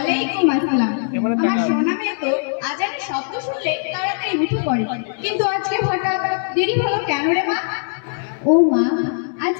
আসসালাম। আমার সোনা মেয়ে তো আজানের শব্দ শুনলে তাড়াতাড়ি উঠে পড়ে, কিন্তু আজকে হঠাৎ দেরি হলো কেন রে মা? ও মা,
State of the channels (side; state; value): right; silent; 65 dB below the other